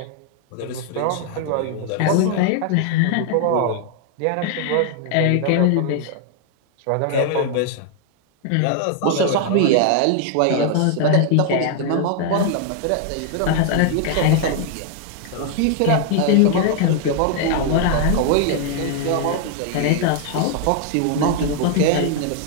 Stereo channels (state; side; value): different; both; correlation 0.00